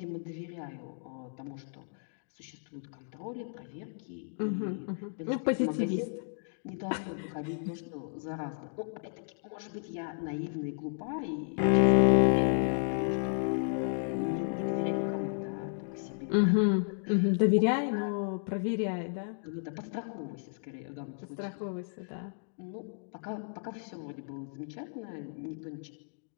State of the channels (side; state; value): right; silent; digital silence